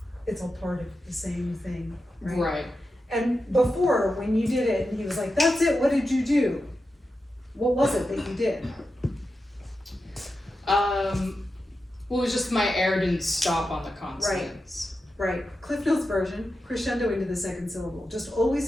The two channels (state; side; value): normal; both; correlation 0.90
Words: It's all part of the same thing, right? Right. And before, when you did it, and he was like, that's it, what did you do? What was it that you did? Well, it was just my air didn't stop on the consonants. Right, Cliff Notes version, crescendo into the second syllable. Just